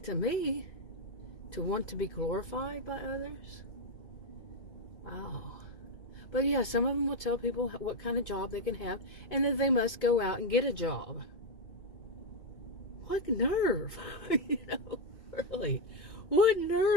to me, to want to be glorified by others. Wow. But yeah, some of them will tell people what kind of job they can have, and that they must go out and get a job. What nerve? Really. What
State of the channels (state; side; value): late; right; 2.2 ms